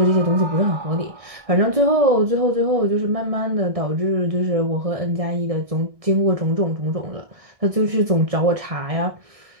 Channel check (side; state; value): left; late; 1.6 ms